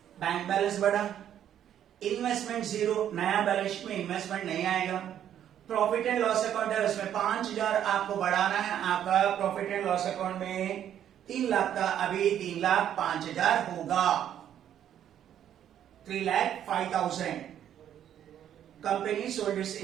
Bank balance बढ़ा, इन्वेस्टमेंट 0, नया बैलेंस शीट में इन्वेस्टमेंट नहीं आएगा। प्रॉफिट एंड लॉस अकाउंट है उसमें 5,000 आपको बढ़ाना है, आपका प्रॉफिट एंड लॉस अकाउंट में 3 लाख का, अभी 3,05,000 होगा, 3,05,000। Company sold its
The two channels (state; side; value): quieter; left; 10.3 dB